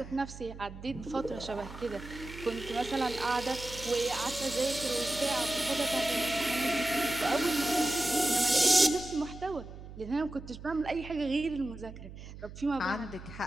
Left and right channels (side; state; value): right; noise; hum, 14 dB below the sound